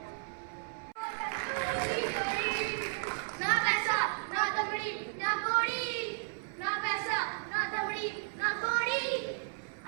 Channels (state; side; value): silent; left; 55 dB below the other